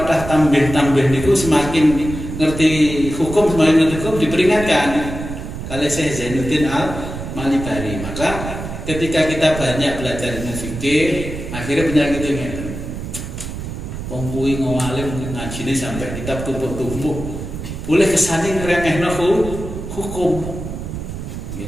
tambih niku semakin ngerti hukum, semakin ngerti hukum diperingatkan. Kalau Syekh Zainuddin Al-Malibari, maka ketika kita banyak belajar ilmu fikih, akhirnya penyakit itu ngeten. Wong kuwi ngalim ngajine sampai kitab tumpuk-tumpuk. Boleh kesane ngremehno hukum.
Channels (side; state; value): right; noise; rumble, 8 dB below the sound